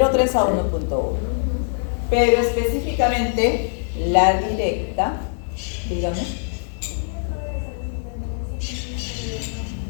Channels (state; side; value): silent; right; 62 dB below the other